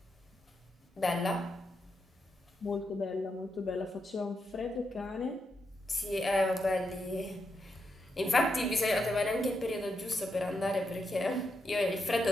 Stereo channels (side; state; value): both; normal; correlation 0.83